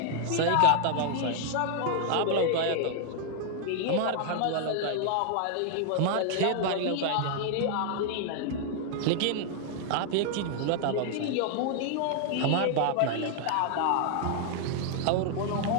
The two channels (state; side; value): different; both; correlation 0.00